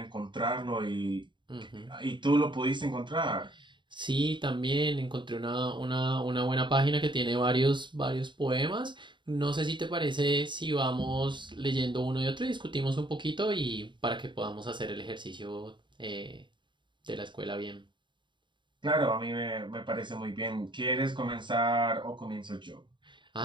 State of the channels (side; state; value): left; late; 0.23 ms